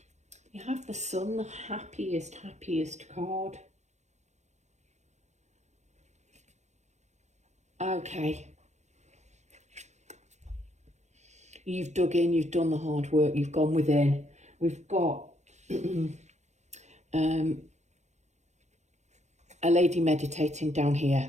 You have the Sun, the happiest card. Okay. You've dug in, you've done the hard work, you've gone within. We've got a lady meditating down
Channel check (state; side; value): late; left; 0.33 ms